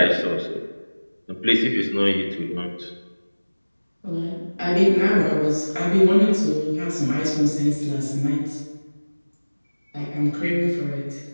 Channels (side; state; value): both; inverted; correlation -1.00